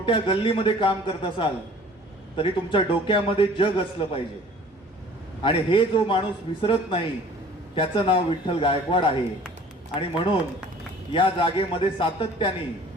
गल्लीमध्ये काम करत असाल तरी तुमच्या डोक्यामध्ये जग असलं पाहिजे. आणि हे जो माणूस विसरत नाही त्याचं नाव विठ्ठल गायकवाड आहे. आणि म्हणून या जागेमध्ये सातत्याने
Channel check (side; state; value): both; normal; correlation 0.49